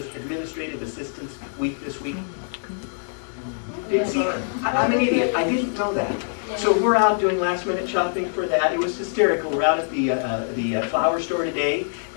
Administrative Assistance Week this week? See, I'm an idiot. I didn't know that. So we're out doing last-minute shopping for that. It was hysterical. We're out at the flower store today,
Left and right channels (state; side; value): silent; right; digital silence